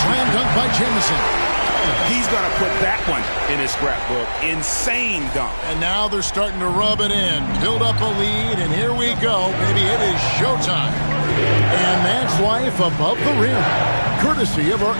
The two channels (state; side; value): inverted; both; correlation -1.00